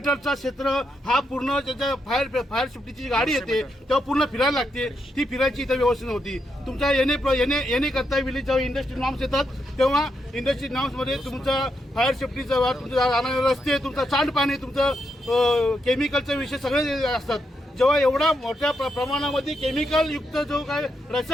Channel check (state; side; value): normal; both; correlation 0.82